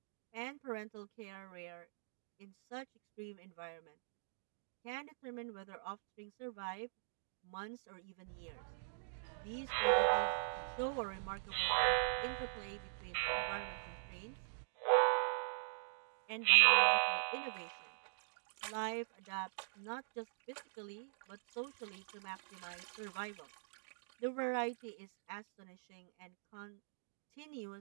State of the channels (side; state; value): left; silent; digital silence